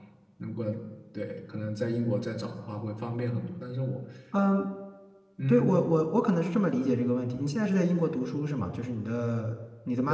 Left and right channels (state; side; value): identical; both; correlation 1.00